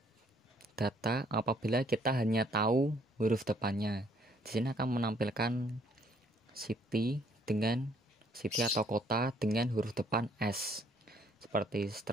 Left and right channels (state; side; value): normal; both; correlation 0.64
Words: data apabila kita hanya tahu huruf depannya. Di sini akan menampilkan city atau kota dengan huruf depan S, seperti